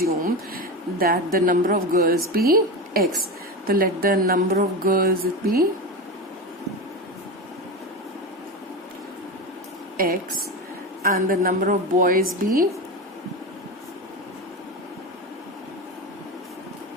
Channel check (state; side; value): normal; both; correlation 0.21